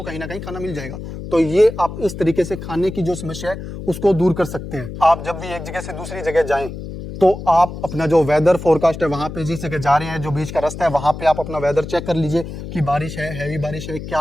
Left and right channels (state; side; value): noise; left; hum, 9 dB below the sound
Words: कहीं ना कहीं खाना मिल जाएगा। तो ये आप इस तरीके से खाने की जो समस्या है उसको दूर कर सकते हैं। आप जब भी एक जगह से दूसरी जगह जाएं तो आप अपना जो वेदर फोरकास्ट है, वहां पे जिस जगह जा रहे हैं, जो बीच का रास्ता है, वहां पे आप अपना वेदर चेक कर लीजिए कि बारिश है, हैवी बारिश है,